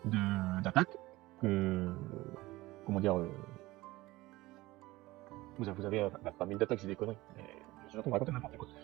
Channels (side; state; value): left; quieter; 19.2 dB